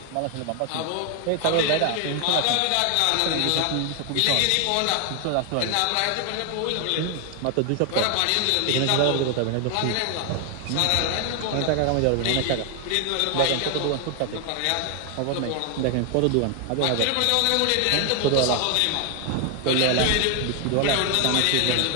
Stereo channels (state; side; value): different; both; correlation 0.00